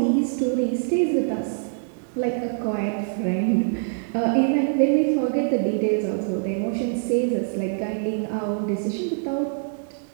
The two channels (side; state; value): left; silent; 62 dB below the other